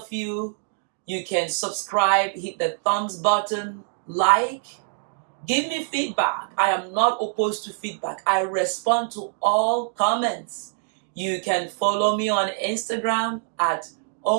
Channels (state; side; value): silent; left; 62 dB below the other